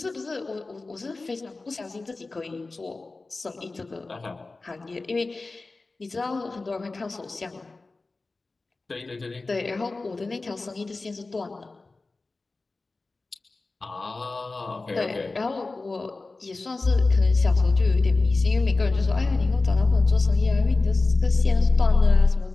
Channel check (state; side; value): quieter; right; 3.5 dB